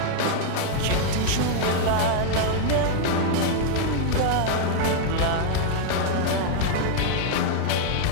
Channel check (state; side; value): different; both; correlation -0.01